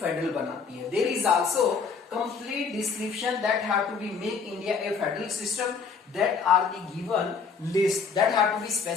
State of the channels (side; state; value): right; quieter; 5.4 dB